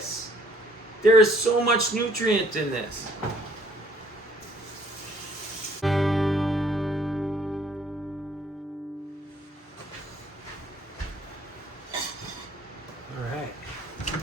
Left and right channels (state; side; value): normal; both; correlation 0.61